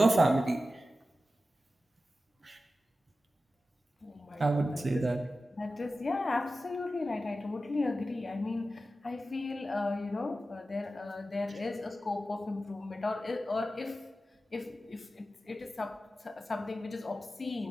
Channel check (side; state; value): both; normal; correlation 0.93